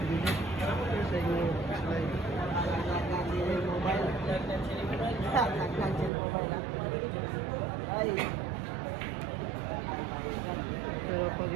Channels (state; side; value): drops out; left; at 6.1 s